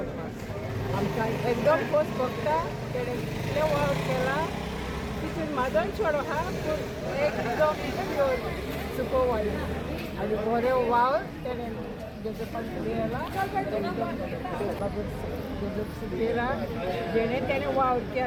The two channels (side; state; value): both; identical; correlation 1.00